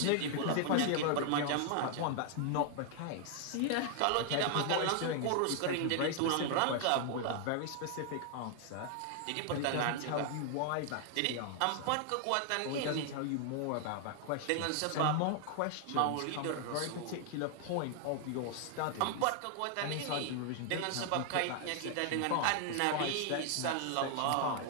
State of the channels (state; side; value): different; both; correlation 0.00